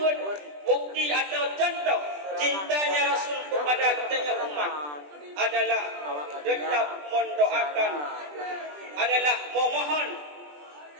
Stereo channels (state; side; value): late; left; 20 ms